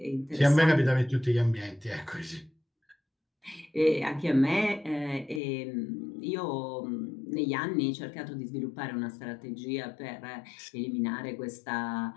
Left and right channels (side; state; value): right; drops out; at 5.4 s